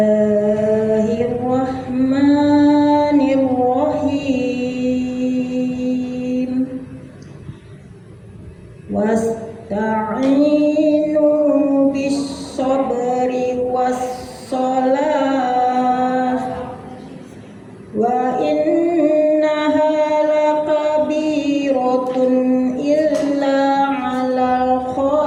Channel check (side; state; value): both; identical; correlation 1.00